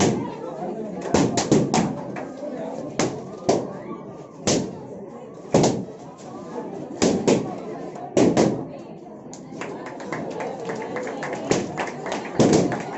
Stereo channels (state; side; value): identical; both; correlation 1.00